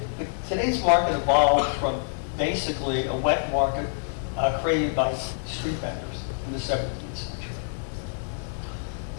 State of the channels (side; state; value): right; silent; digital silence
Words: Today's market evolved from basically a wet market created by street vendors in the 17th century.